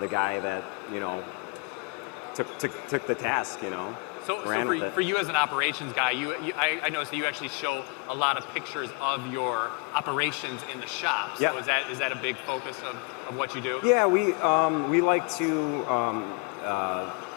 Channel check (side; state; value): right; quieter; 30.1 dB